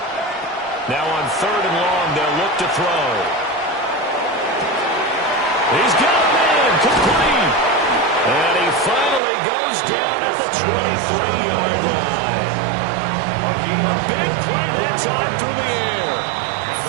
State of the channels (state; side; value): drops out; left; at 9.2 s